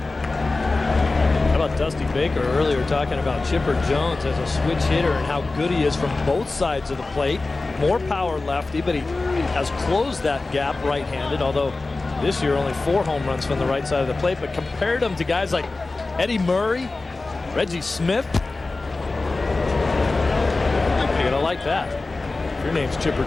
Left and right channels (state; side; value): quieter; right; 3.4 dB